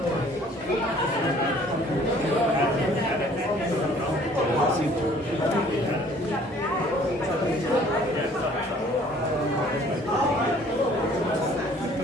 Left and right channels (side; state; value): both; normal; correlation 0.56